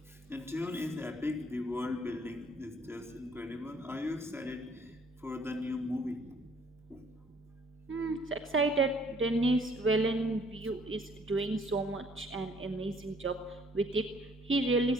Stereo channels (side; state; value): both; normal; correlation 0.61